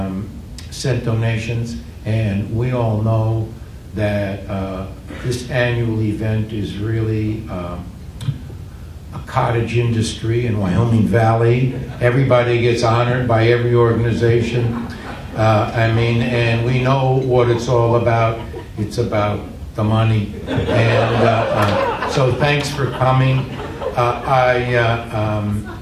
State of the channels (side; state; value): both; identical; correlation 1.00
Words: sent donations. And we all know that this annual event is really a cottage industry in Wyoming Valley. Everybody gets honored by every organization. I mean, and we know what it's all about. It's about the money. And So thanks for coming.